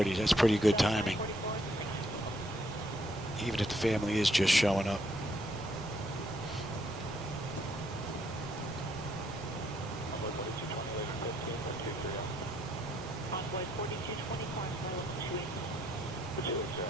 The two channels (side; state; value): both; normal; correlation 0.71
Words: That's pretty good timing. Even if the family is just showing up. Envoy 4224, level 28.